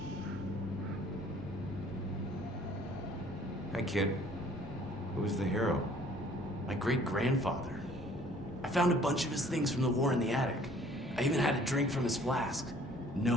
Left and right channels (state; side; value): normal; both; correlation 0.56